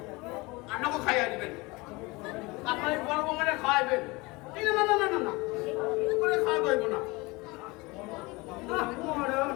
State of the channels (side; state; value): right; quieter; 24.2 dB